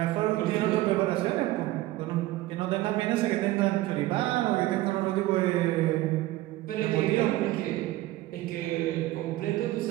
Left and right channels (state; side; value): quieter; left; 16.9 dB